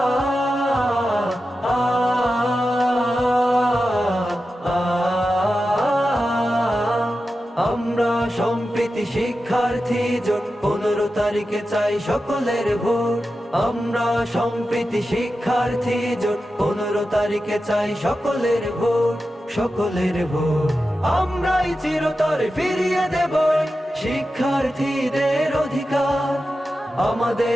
আমরা সম্প্রীতি শিক্ষার্থী জোট 15 তারিখে চাই সকলের ভোট। আমরা সম্প্রীতি শিক্ষার্থী জোট 15 তারিখে চাই সকলের ভোট, সকলের ভোট। আমরাই চিরতরে ফিরিয়ে দেব শিক্ষার্থীদের অধিকার।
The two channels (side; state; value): both; normal; correlation 0.92